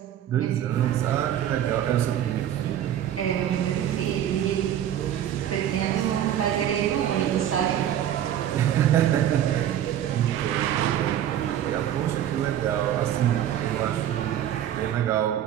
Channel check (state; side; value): quieter; left; 10.9 dB